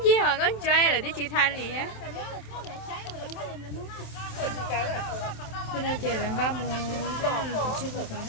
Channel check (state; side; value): late; right; 27 ms